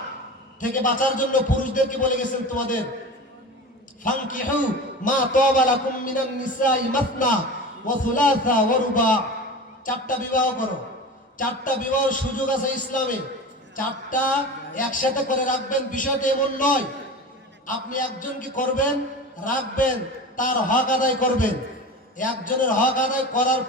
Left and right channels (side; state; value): both; normal; correlation 0.31